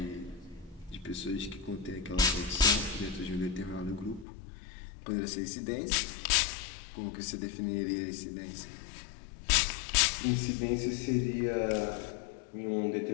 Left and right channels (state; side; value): drops out; right; at 4.2 s